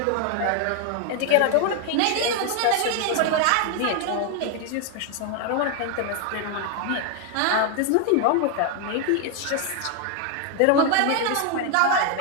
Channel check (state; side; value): different; both; correlation 0.00